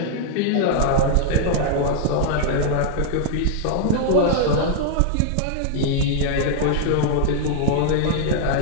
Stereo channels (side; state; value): both; different; correlation -0.01